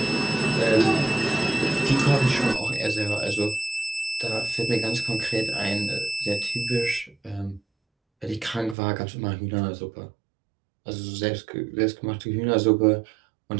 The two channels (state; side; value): drops out; left; at 8.8 s